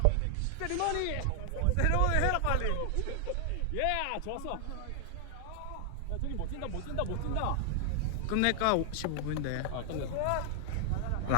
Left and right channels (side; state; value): both; different; correlation 0.00